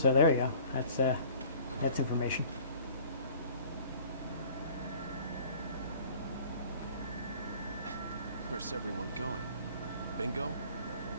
there you go. That's information. Where's everyone going? Bingo?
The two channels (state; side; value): inverted; both; correlation -0.49